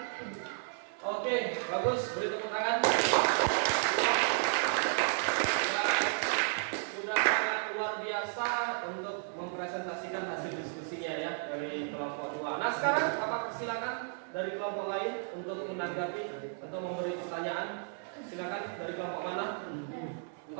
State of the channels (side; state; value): left; silent; 56 dB below the other